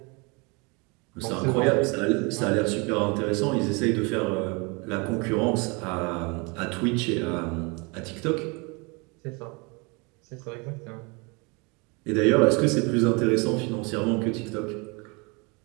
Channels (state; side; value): quieter; left; 29.5 dB